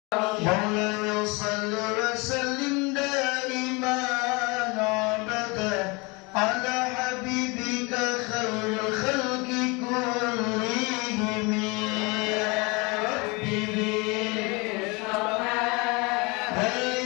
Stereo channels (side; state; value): right; quieter; 27.4 dB